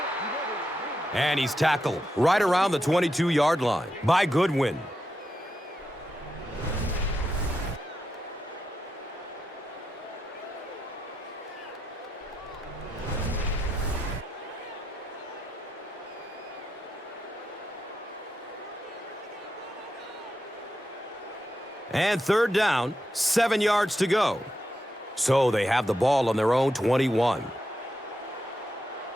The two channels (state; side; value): normal; both; correlation 0.85